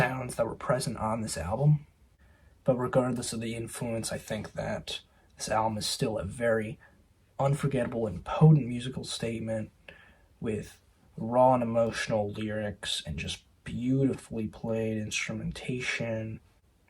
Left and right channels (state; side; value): identical; both; correlation 1.00